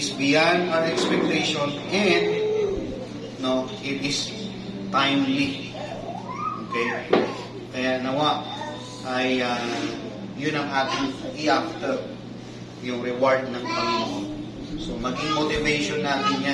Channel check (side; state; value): both; identical; correlation 1.00